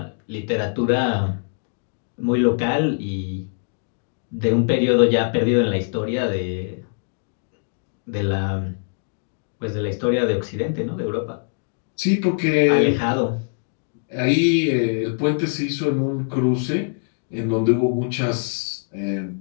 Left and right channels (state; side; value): silent; right; digital silence